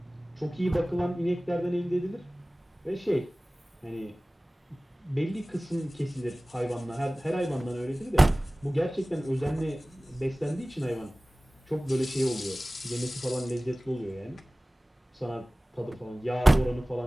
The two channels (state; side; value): normal; both; correlation 0.98